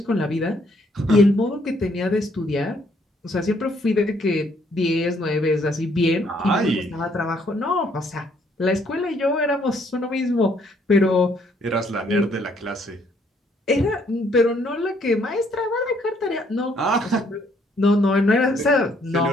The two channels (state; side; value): normal; both; correlation 0.67